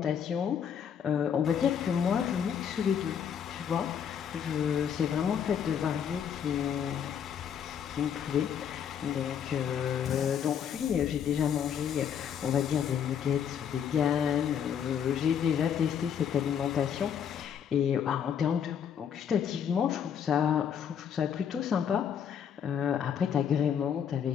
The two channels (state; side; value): quieter; right; 8.2 dB